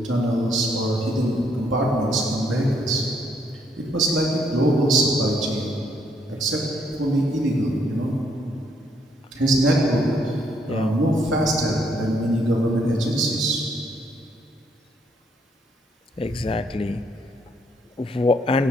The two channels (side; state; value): both; normal; correlation 0.70